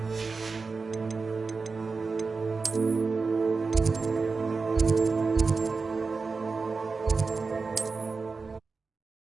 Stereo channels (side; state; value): left; quieter; 4.4 dB